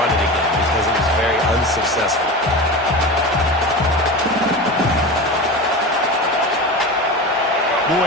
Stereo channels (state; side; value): normal; both; correlation 0.27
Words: it again because it was very unsuccessful.